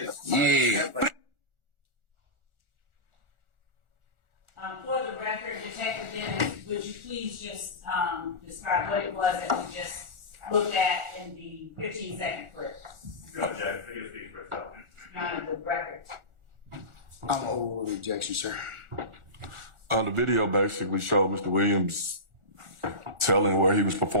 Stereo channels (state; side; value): late; left; 1.4 ms